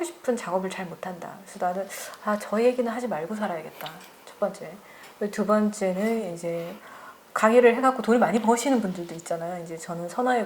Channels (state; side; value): identical; both; correlation 1.00